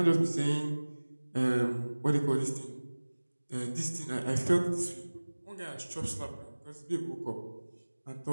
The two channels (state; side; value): inverted; both; correlation -1.00